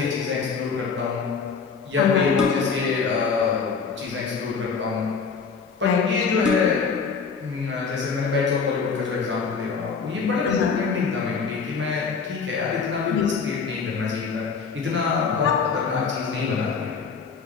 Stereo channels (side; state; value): right; quieter; 5.4 dB